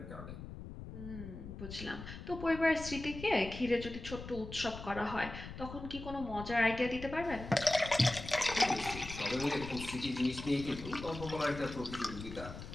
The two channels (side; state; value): left; noise; rumble, 11 dB below the sound